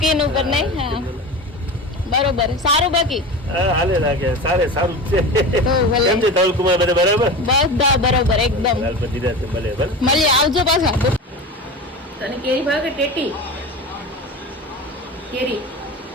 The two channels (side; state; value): both; normal; correlation 0.29